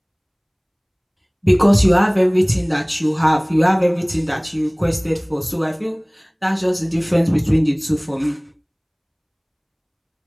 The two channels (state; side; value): identical; both; correlation 1.00